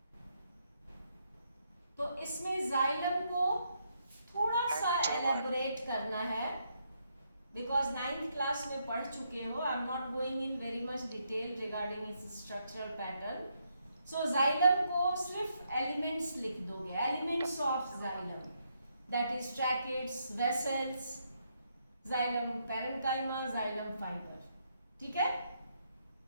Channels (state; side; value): inverted; both; correlation -0.78